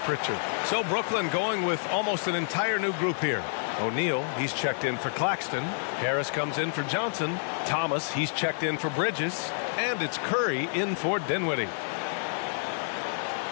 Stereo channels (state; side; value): silent; right; digital silence